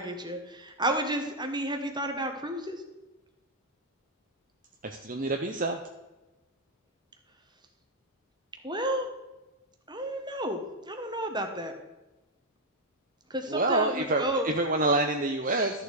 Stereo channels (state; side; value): normal; both; correlation -0.01